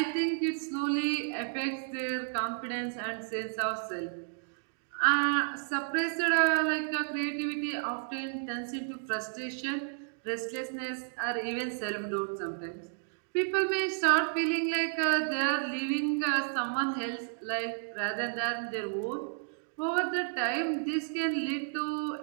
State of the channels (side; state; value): left; silent; digital silence